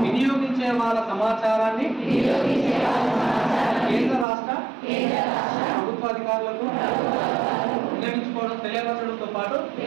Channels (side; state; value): left; drops out; at 4.2 s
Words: వినియోగించే వాళ్ళ సమాచారాన్ని కేంద్ర రాష్ట్ర ప్రభుత్వ అధికారులకు వినియోగించుకోవడం తెలియపరచడంతో పాటు